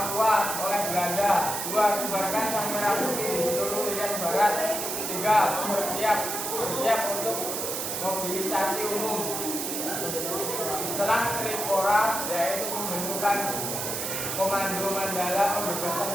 oleh Belanda. 2. Bubarkan Sang Merah Putih di seluruh Irian Barat. 3. Bersiap untuk mobilisasi umum. Setelah Trikora, yaitu pembentukan Komando Mandala Pembebasan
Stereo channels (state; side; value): noise; right; hiss, 3 dB below the sound